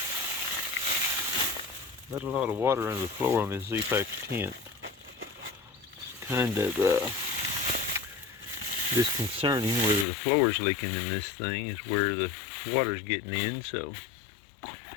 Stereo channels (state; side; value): drops out; right; at 10.1 s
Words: let a lot of water under the floor on this Z-Pack tent. It's kind of disconcerting. Whether the floor's leaking in this thing is where the water's getting in. So